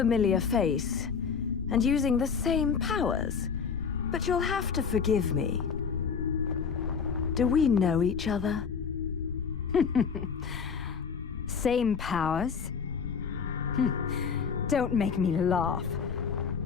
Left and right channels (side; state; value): right; quieter; 6.2 dB